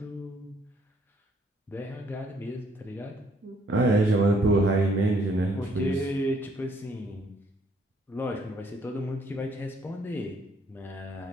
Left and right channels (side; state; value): both; normal; correlation 0.65